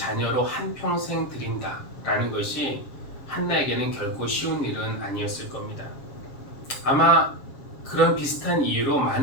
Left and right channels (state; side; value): late; right; 7.2 ms